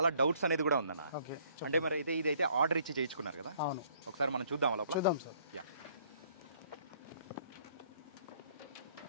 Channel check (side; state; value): both; inverted; correlation -0.62